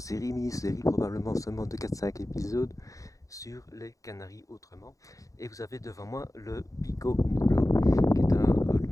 mini-série, probablement seulement de 4-5 épisodes sur les Canaries autrement. Et vous avez devant moi le Pico Nublo, qui est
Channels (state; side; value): late; right; 0.16 ms